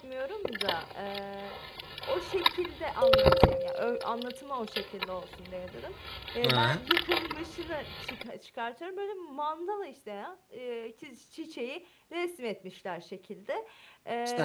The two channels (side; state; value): both; identical; correlation 1.00